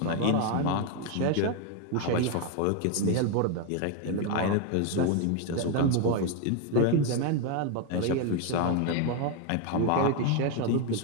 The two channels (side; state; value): both; different; correlation 0.01